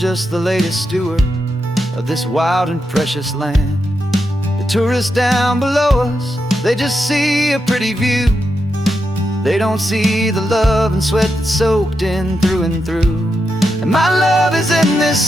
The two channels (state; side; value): normal; both; correlation 0.85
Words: the latest steward of this wild and precious land. The tourists down below us, they just see a pretty view. They don't see the love and sweat that's soaked in through and through. And my love is in this